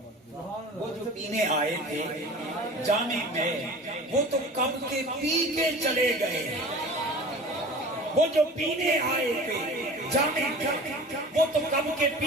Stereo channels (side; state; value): both; normal; correlation 0.40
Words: وہ جو پینے آئے تھے جام میں, وہ تو کب کے پی کے چلے گئے. وہ جو پینے آئے تھے جام میں, وہ تو کب کے